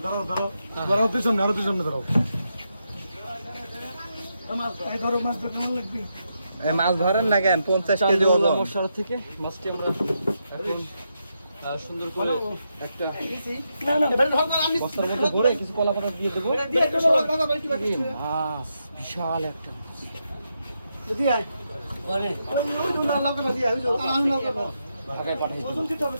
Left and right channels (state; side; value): inverted; both; correlation -0.83